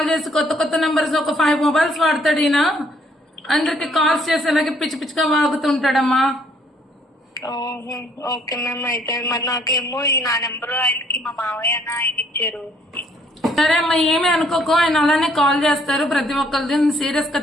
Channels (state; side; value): normal; both; correlation 0.64